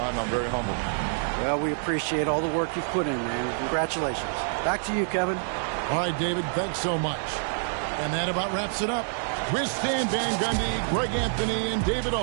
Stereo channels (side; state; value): left; silent; 60 dB below the other